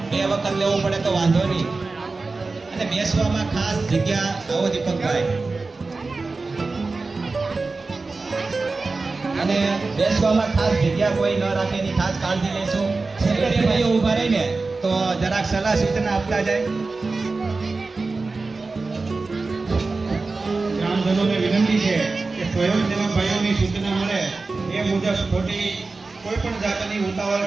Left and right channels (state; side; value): quieter; left; 3.8 dB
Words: 2 વખત લેવું પડે તો વાંધો નહીં. અને બેસવામાં ખાસ જગ્યા, આવો દીપકભાઈ, અને બેસવામાં ખાસ જગ્યા કોઈ ન રાખે એની ખાસ કાળજી લેશું. સેક્રેટરીઓ ઊભા રહીને તો જરાક સલાહ સૂચના આપતા જાય. ગ્રામજનોને વિનંતી છે કે સ્વયંસેવક ભાઈઓની સૂચના મળે એ મુજબ ખોટી કોઈ પણ જાતની ઉતાવળ